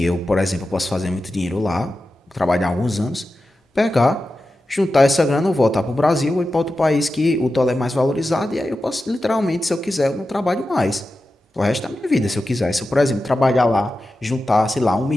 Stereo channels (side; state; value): both; normal; correlation 0.92